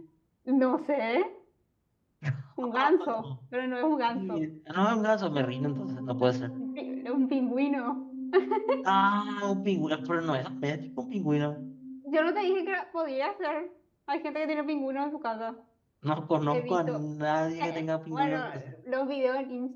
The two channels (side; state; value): both; identical; correlation 1.00